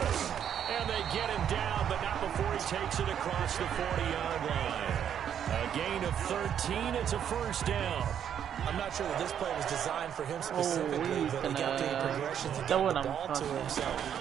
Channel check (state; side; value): quieter; left; 9.0 dB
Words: And they get him down, but not before he takes it across the 40-yard line. A gain of 13. It's a first down. I'm not sure that this play was designed for him specifically, but he got through the progressions and got the ball to him. So,